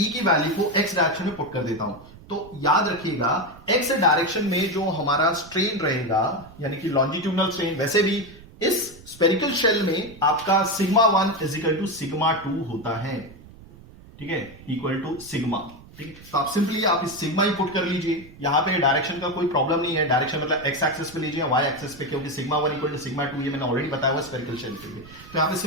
की वैल्यू को एक्स डायरेक्शन में पुट कर देता हूं। तो याद रखिएगा एक्स डायरेक्शन में जो हमारा स्ट्रेन रहेगा, यानी कि लॉन्जिट्यूडनल स्ट्रेन, वैसे भी इस स्पेरिकल शेल में आपका सिग्मा 1 इजिकल टू सिग्मा 2 होता है, ठीक है, इक्वल टू सिग्मा। ठीक है, तो आप सिंपली आप इस सिग्मा ही पुट कर लीजिए। यहां पे डायरेक्शन का कोई प्रॉब्लम नहीं है, डायरेक्शन मतलब एक्स एक्सिस पे लीजिए, वाई एक्सिस पे, क्योंकि सिग्मा 1 इक्वल टू सिग्मा 2 ये मैंने ऑलरेडी बताया हुआ स्फेरिकल शेल के लिए। तो यहां पे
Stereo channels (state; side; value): noise; right; rumble, 20 dB below the sound